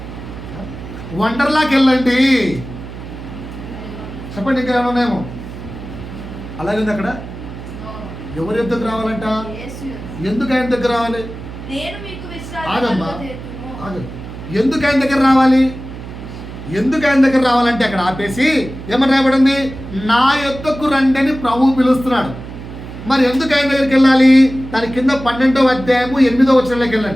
వండర్లాకి వెళ్ళండి. చెప్పండి ఇంకా ఏమైనా ఉన్నాయేమో. అలాగే ఉంది అక్కడ. ఎవరి దగ్గర రావాలంట? ఎందుకు ఆయన దగ్గర రావాలి? నేను మీకు ఆగమ్మా, విశ్రాంతి ఆగండి. ఎందుకు ఆయన దగ్గర రావాలి? ఎందుకు ఆయన దగ్గర రావాలంటే అక్కడ ఆపేసి ఏమని రాయబడింది? నా యొద్దకు రండి అని ప్రభువు పిలుస్తున్నాడు. మరి ఎందుకు ఆయన దగ్గరికి వెళ్ళాలి? దాని కింద 12వ అధ్యాయము 8వ వచనంలోకి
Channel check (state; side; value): noise; right; hum, 12 dB below the sound